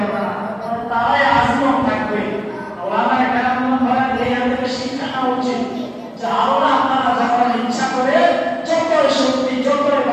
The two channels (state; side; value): identical; both; correlation 1.00